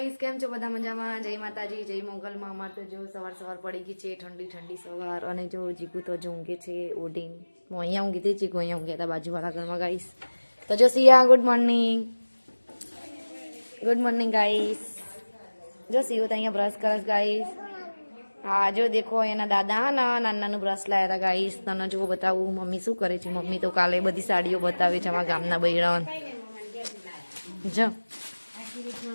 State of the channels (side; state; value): both; inverted; correlation -1.00